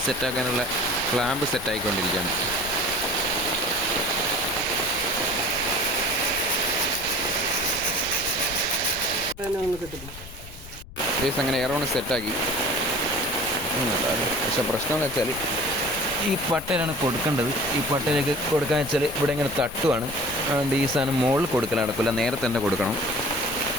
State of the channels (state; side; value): noise; left; rumble, 15 dB below the sound